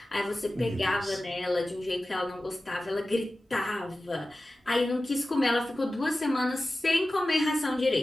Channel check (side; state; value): both; normal; correlation 0.95